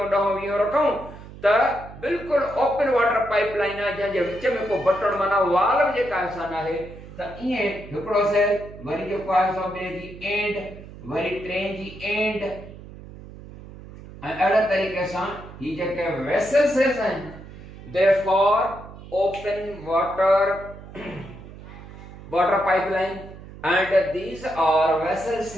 ॾहों वीहों रखूं त बिल्कुलु ओपन वाटर पाइप लाइन आहे जंहिंजे विच में को बटण माना वॉल बि जेका असां न आहे त ईअं हिकिड़ो सेल वरी जेको आहे सो ॿिए जी एंड वरी टे जी एंड ऐं अहिड़े तरीक़े सां ही जेके वेसल सेल्स आहिनि therefore open water pipeline and these are vessel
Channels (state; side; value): noise; right; hum, 16 dB below the sound